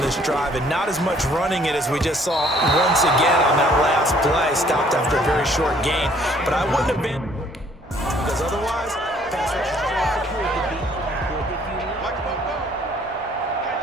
this drive, and not as much running it as we just saw once again on that last play. Stopped after a very short gain. But I wouldn't have been, because otherwise, pass rush is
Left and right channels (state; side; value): normal; both; correlation 0.61